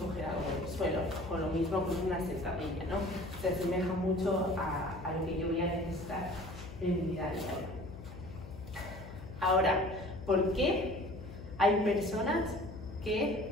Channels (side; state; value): left; noise; hum, 13 dB below the sound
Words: algo del suelo, o lo mismo con una sentadilla, ¿no? Se asemeja mucho a lo que yo voy a necesitar en mi vida diaria. Ahora, ¿por qué hay personas